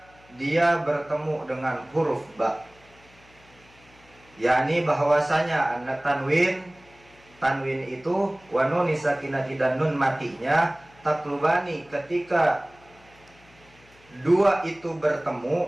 dia bertemu dengan huruf ba, yakni bahwasanya anak tanwin itu wa nun sakinati dan nun matinya taklubani, ketika dua itu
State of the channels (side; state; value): left; noise; hum, 28 dB below the sound